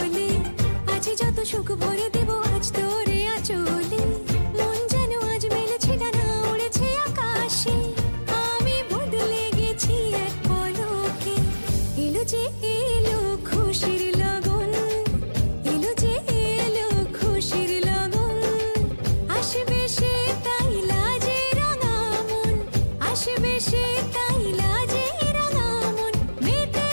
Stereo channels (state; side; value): inverted; both; correlation -1.00